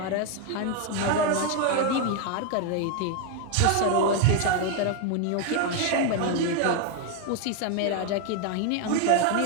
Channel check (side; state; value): both; different; correlation 0.01